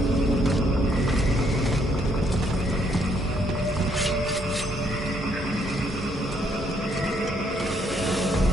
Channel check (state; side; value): normal; both; correlation 0.70